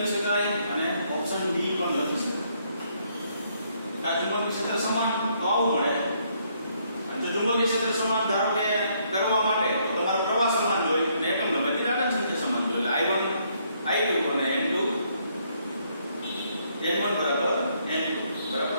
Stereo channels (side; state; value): both; inverted; correlation -0.71